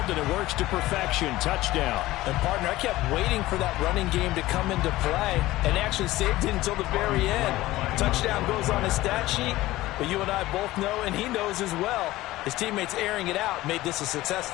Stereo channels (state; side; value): quieter; right; 17.2 dB